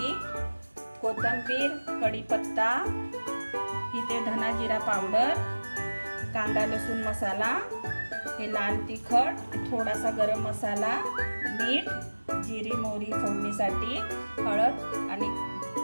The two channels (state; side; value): inverted; both; correlation -1.00